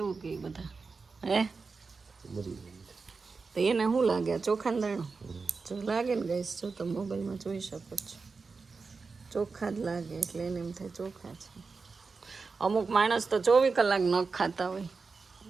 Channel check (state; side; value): quieter; left; 4.5 dB